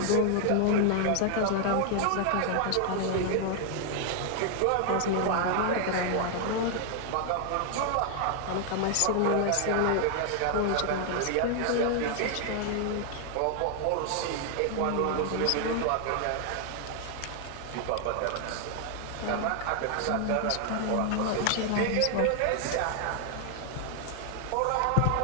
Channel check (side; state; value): both; different; correlation 0.00